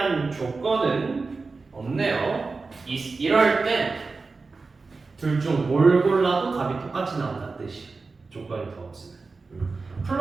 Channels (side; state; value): left; quieter; 4.1 dB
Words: 조건은 없네요. 이럴 땐 둘 중 뭘 골라도 답이 똑같이 나온다는 뜻이에요. 조건이 더 없으면.